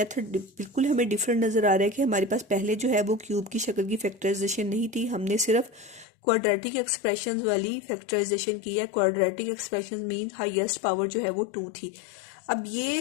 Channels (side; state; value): right; drops out; at 6.1 s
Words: बिल्कुल हमें डिफरेंट नज़र आ रहा है कि हमारे पास पहले जो है वो क्यूब की शक्ल की फैक्टराइजेशन नहीं थी, हमने सिर्फ क्वाड्रेटिक एक्सप्रेशंस वाली फैक्टराइजेशन की है। Quadratic expressions mean highest power जो है वो 2 थी। अब